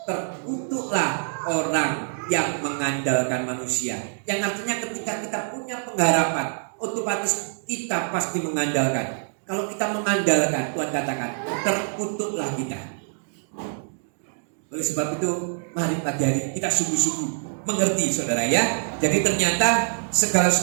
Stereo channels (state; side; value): silent; left; digital silence